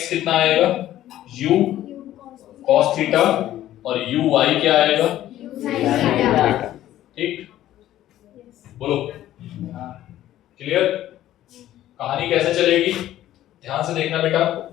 कितना आएगा? u cos थीटा और uy क्या आएगा? ठीक, बोलो। क्लियर? कहानी कैसे चलेगी ध्यान से देखना बेटा।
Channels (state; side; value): quieter; right; 13.3 dB